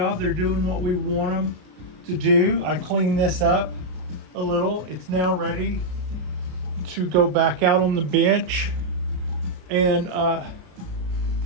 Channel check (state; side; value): late; left; 33 ms